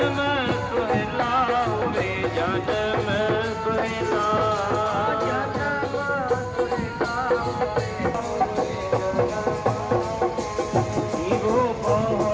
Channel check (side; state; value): both; identical; correlation 1.00